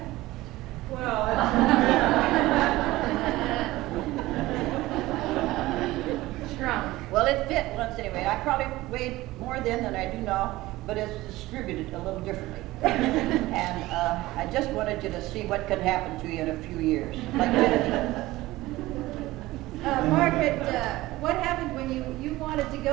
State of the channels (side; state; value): left; quieter; 18.1 dB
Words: Well, shrunk. Well, it fit once anyway. I probably weighed more then than I do now, but it's distributed a little differently. And I just wanted you to see what can happen to you in a few years. Like Margaret, what happened when you wanted to